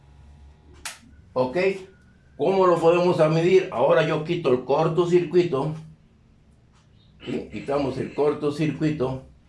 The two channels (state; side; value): identical; both; correlation 1.00